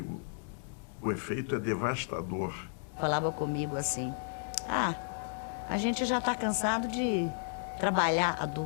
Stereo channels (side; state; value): right; silent; 56 dB below the other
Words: o efeito é devastador. Falava comigo assim, a gente já está cansado de trabalhar